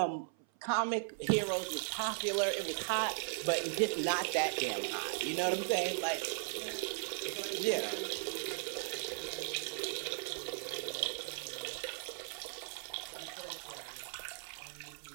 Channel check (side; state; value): left; silent; 53 dB below the other